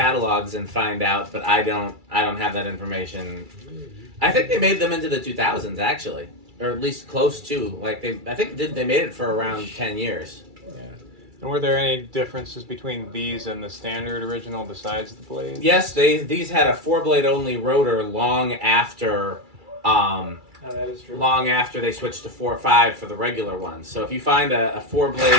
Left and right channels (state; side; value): late; left; 2.3 ms